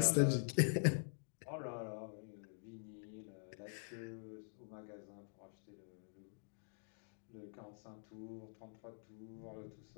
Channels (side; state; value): right; silent; digital silence